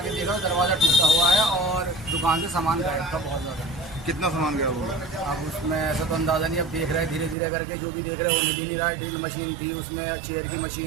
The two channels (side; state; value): left; drops out; at 7.4 s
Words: देखा दरवाजा टूटा हुआ है और दुकान से सामान गायब था बहुत ज़्यादा। कितना सामान गया होगा? अब उसमें ऐसा तो अंदाज़ा नहीं, अब देख रहे हैं धीरे धीरे करके, जो भी देख रहे हैं वो मिल नहीं रहा है। ड्रिल मशीन थी, उसमें चेयर की